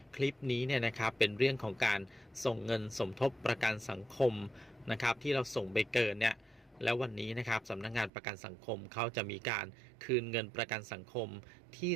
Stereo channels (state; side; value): drops out; left; at 8.1 s